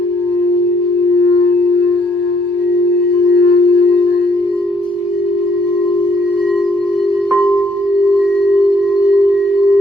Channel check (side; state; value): both; normal; correlation 0.68